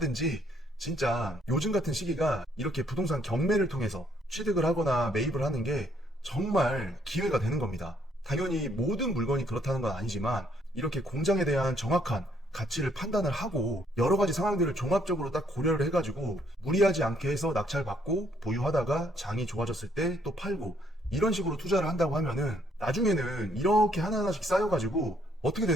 진짜 요즘 같은 시기가 이렇게 부동산 경매를 통해서 취득을 하거나 매입을 하는 게 정말 기회가 되는 겁니다. 당연히 모든 물건이 그렇다는 건 아니지만 이렇게 공장에 대한 정확한 가치를 판단을 하고 여러 가지 상황들을 종합적으로 딱 고려를 해가지고 무리하지 않게 해서 낙찰받고 보유하다가 장이 좋아졌을 때 또 팔고 이런 식으로 투자를 한다고 하면은 나중에는 이렇게 하나하나씩 쌓여가지고 어떻게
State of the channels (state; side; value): normal; both; correlation 0.68